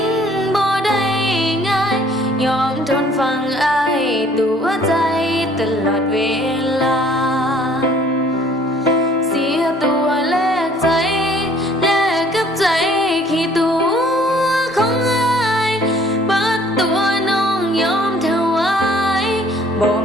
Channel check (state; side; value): normal; both; correlation 0.57